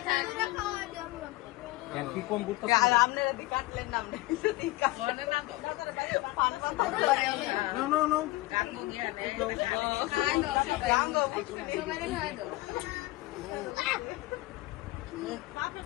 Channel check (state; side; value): quieter; right; 19.8 dB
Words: কি কম করতে